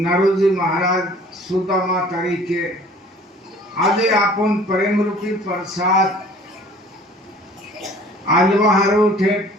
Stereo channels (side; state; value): both; normal; correlation 0.50